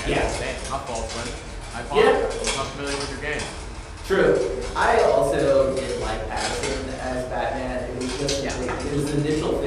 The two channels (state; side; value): identical; both; correlation 1.00